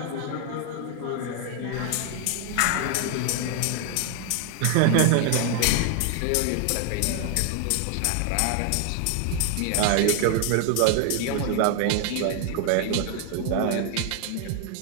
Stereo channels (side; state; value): both; different; correlation 0.01